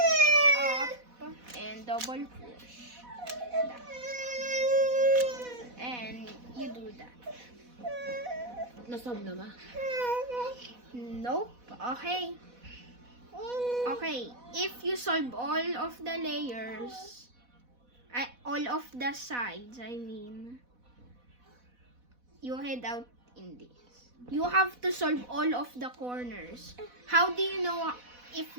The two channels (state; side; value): late; left; 4.1 ms